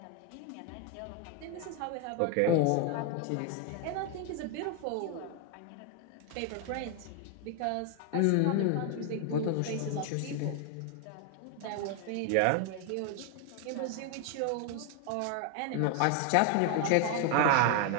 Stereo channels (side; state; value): both; different; correlation 0.00